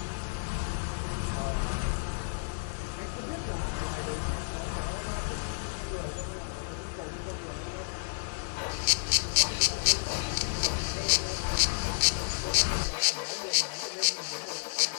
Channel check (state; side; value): silent; right; digital silence